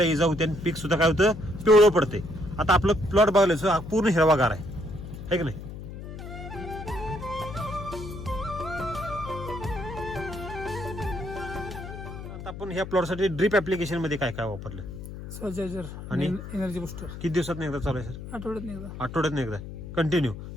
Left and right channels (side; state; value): left; noise; hum, 10 dB below the sound